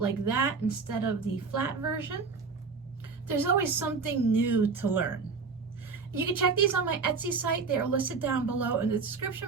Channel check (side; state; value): left; quieter; 4.8 dB